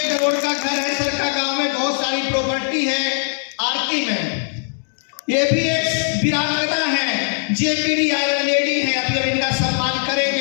करोड़ का घर है सर का, गांव में बहुत सारी प्रॉपर्टी है। आरती में ये भी एक वीरांगना है, जेएमबीडी आयरन लेडी है, अभी इनका सम्मान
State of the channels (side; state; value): right; silent; digital silence